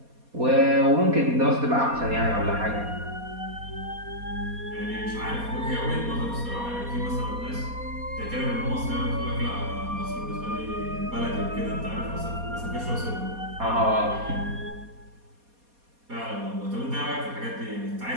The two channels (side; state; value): left; late; 4.2 ms